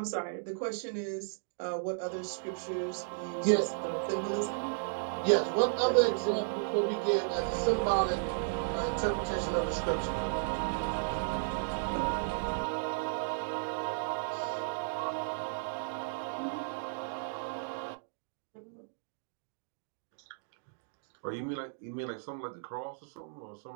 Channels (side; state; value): left; silent; digital silence